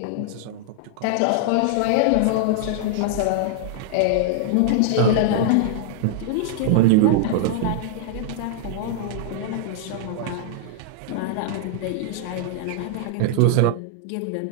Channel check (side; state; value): both; different; correlation -0.01